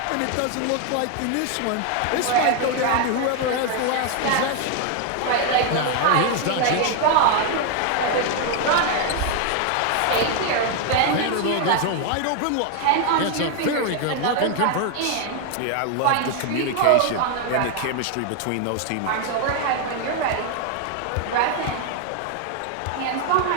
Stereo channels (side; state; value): both; different; correlation 0.01